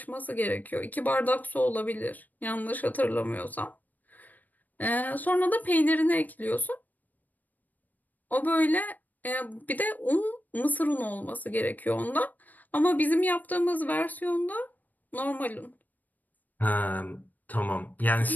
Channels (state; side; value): late; right; 0.084 ms